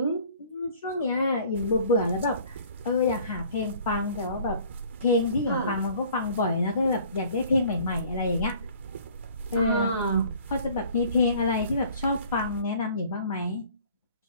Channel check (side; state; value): both; inverted; correlation -0.52